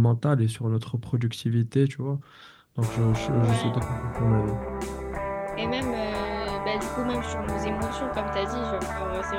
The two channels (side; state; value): both; identical; correlation 1.00